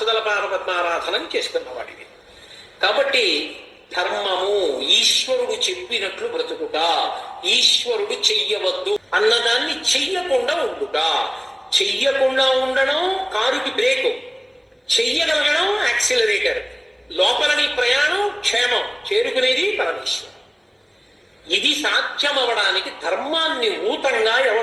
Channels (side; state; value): both; identical; correlation 1.00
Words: పాదపద్మారాధనం చేసుకున్నవాడివి. కాబట్టి ధర్మము ఈశ్వరుడు చెప్పినట్లు బ్రతుకుట, ఈశ్వరుడు చెయ్యవద్దు అన్నదాన్ని చెయ్యకుండా ఉండుట. చెయ్యకుండా ఉండడం కారుకి బ్రేకు, చెయ్యగలగడం యాక్సిలరేటర్. లోపలని ప్రయాణం క్షేమం, చేరుకునేది పరమేశ్వరం. ఇది సాధ్యమవడానికి ధర్మాన్ని ఊతంగా